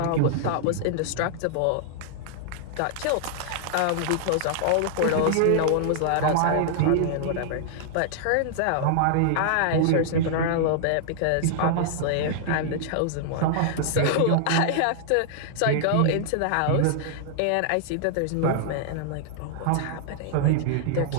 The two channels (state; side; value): different; both; correlation -0.01